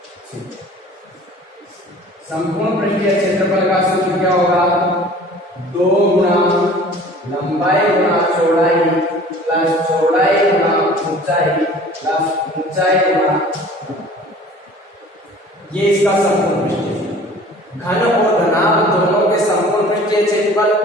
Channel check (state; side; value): normal; both; correlation 0.47